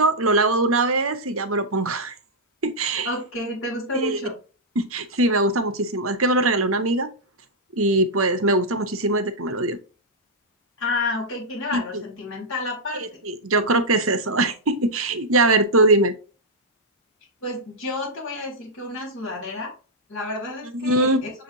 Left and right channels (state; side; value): normal; both; correlation -0.07